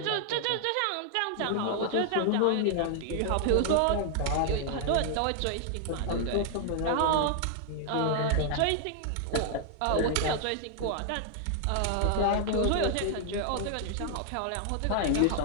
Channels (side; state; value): both; different; correlation 0.00